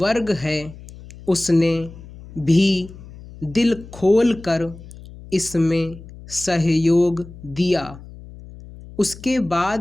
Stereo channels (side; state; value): left; noise; hum, 17 dB below the sound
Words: है, उसने भी दिल खोल कर इसमें सहयोग दिया। उसके